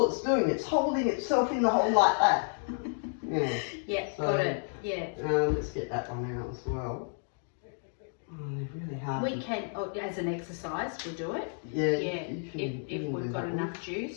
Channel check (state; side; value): silent; right; 57 dB below the other